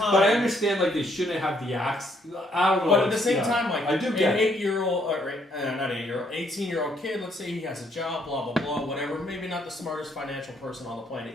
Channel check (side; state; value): both; normal; correlation 0.69